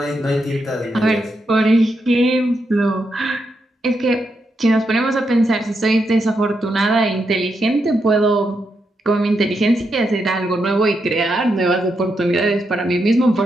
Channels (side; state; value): both; normal; correlation 0.83